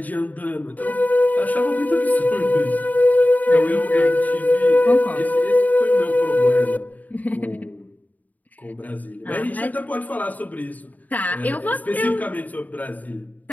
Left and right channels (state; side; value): late; right; 0.078 ms